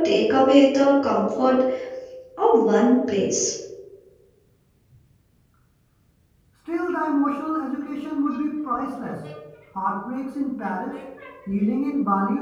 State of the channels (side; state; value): both; identical; correlation 1.00